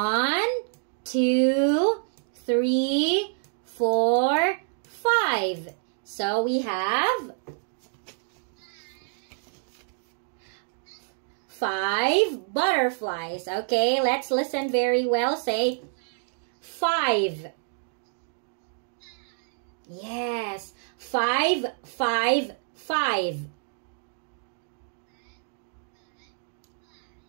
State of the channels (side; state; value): left; silent; 60 dB below the other